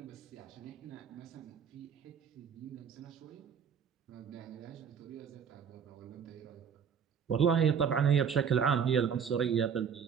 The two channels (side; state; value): left; quieter; 7.2 dB